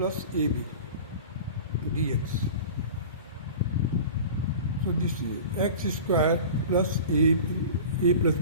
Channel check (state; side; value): inverted; both; correlation -0.37